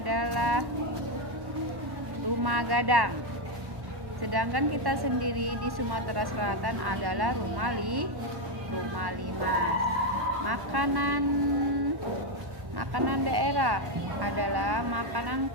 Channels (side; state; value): left; late; 1.1 ms